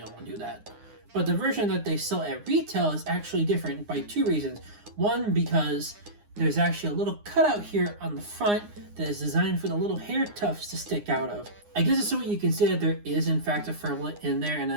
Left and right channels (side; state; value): left; late; 9.7 ms